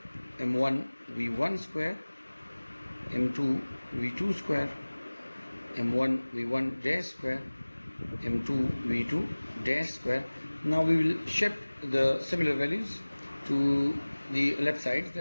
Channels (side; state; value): both; inverted; correlation -1.00